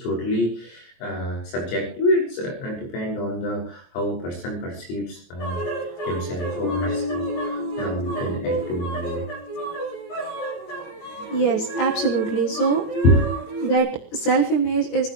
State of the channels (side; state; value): right; late; 23 ms